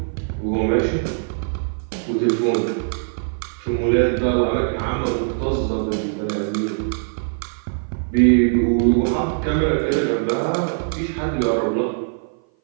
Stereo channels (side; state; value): left; silent; 56 dB below the other